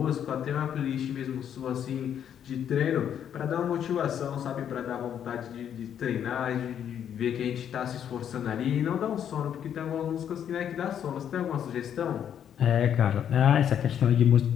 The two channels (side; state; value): right; quieter; 9.2 dB